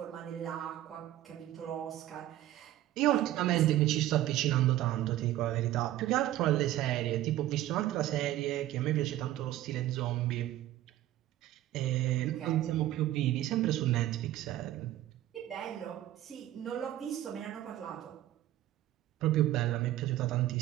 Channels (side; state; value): left; quieter; 13.9 dB